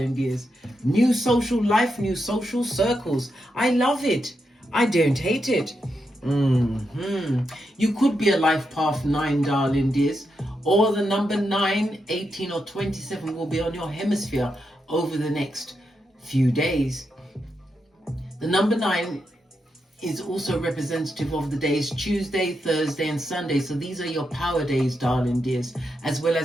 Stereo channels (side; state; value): both; normal; correlation 0.84